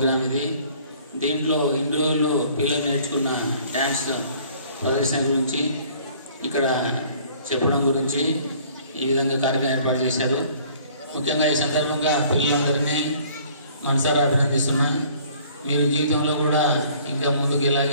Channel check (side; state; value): both; inverted; correlation -0.55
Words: ఇది. దీంట్లో ఇన్ని రోజులు పిల్లలు నేర్చుకున్న డ్యాన్స్ ప్రదర్శన గురించి ఇక్కడ చెప్పడం గురించి ఈ విధంగా కార్యక్రమం ఏర్పాటు చేశారు. ముఖ్యంగా ఈ సందర్భంగా పిల్లలందరినీ మనసారా అభినందిస్తున్నా. మీరు జీవితంలో కూడా ఇంకా ముందుకు